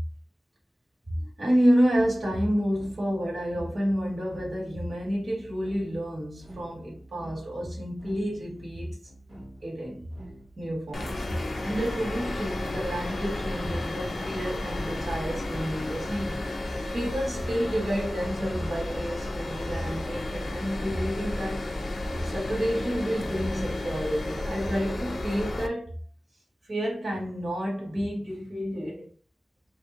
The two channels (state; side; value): normal; both; correlation 0.96